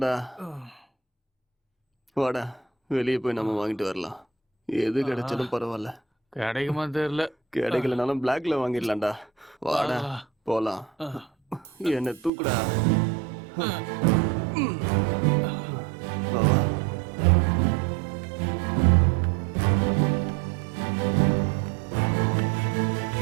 வாடா, வெளியே போய் நம்ம வாங்கிட்டு வரலாம். எது கிடைச்சாலும் பரவாயில்ல. கிடைக்குமா தெரியல. கிடைக்கலனாலும் பிளாக்ல வாங்கிடலாம்டா. வாடா போலாம். என்ன தூக்குடா. வா வா.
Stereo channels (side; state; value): left; drops out; at 12.3 s